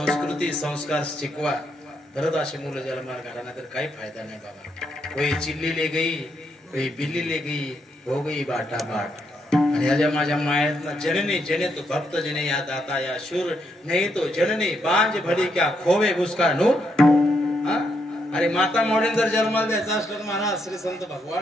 संस्कार शिकवा. खरंच अशी मुलं ज्याला मार घाला नाही तर काही फायदा नाही बाबा. कोई चिल्ली ले गई बिल्ली ले गई हो गई बाटा बाट। आणि या माझ्या मायात जननी जने तो भक्त जने या दाता या शूर नहीं तो जननी बांज भली क्या खोवे उसका नूर। अरे माता मॉडेल जर जन्माला द्यायचा असलं तर महाराज श्री संत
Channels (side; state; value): both; normal; correlation 0.78